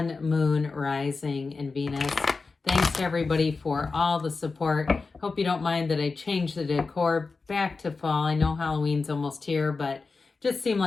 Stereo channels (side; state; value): right; quieter; 4.2 dB